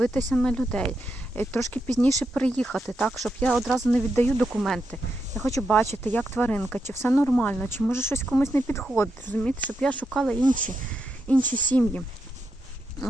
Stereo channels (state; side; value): normal; both; correlation 0.84